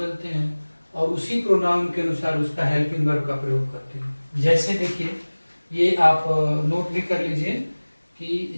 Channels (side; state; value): both; inverted; correlation -1.00